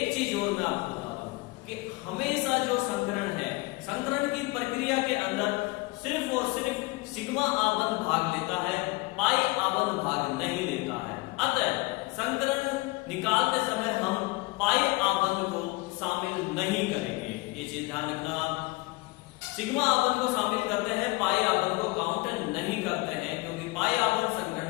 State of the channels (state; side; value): quieter; right; 24.2 dB